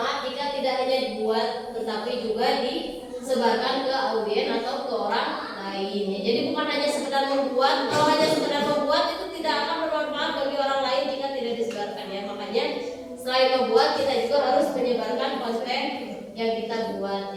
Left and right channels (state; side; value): identical; both; correlation 1.00